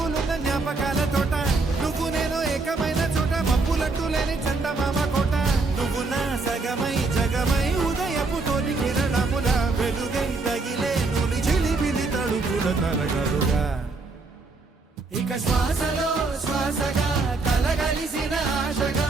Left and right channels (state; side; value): quieter; left; 3.7 dB